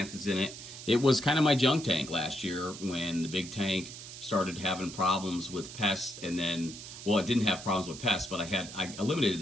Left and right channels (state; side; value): noise; right; hiss, 12 dB below the sound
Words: in it. It was kind of my junk tank last year when the big tank started having problems with pests, and then, well, it didn't have problems with pests, but I eliminated